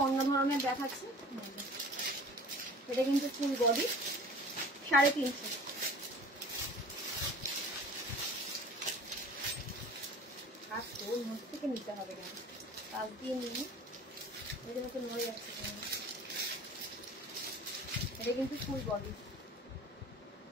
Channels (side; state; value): both; normal; correlation 0.43